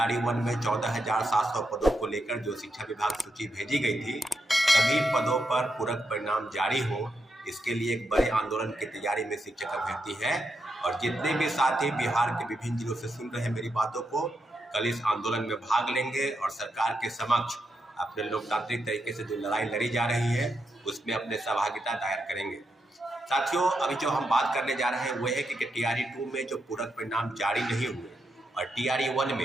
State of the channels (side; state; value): both; normal; correlation 0.83